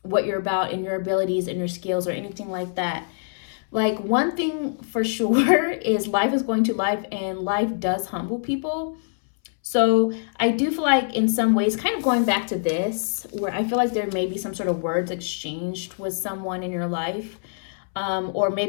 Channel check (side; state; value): right; silent; 62 dB below the other